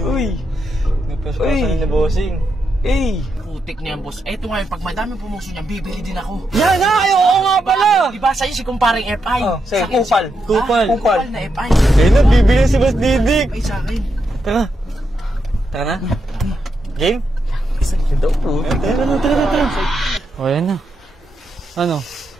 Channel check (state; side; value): normal; both; correlation 0.83